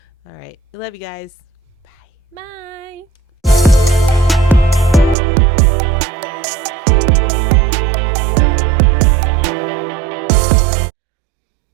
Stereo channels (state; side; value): drops out; left; at 5.2 s